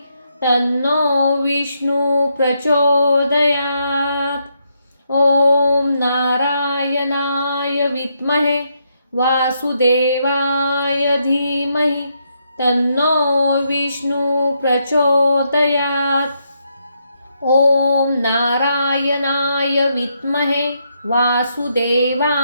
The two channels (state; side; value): inverted; both; correlation -0.78